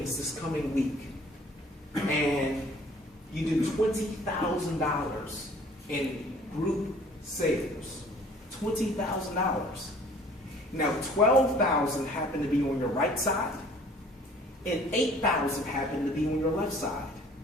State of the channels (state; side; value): normal; both; correlation 0.53